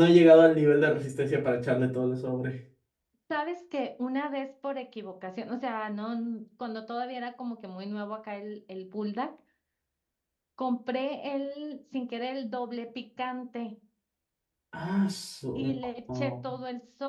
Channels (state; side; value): identical; both; correlation 1.00